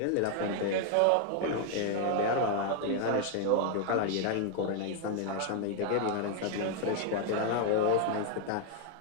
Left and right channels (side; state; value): both; different; correlation 0.00